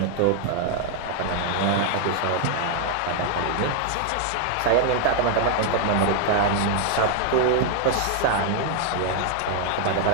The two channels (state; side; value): different; both; correlation 0.00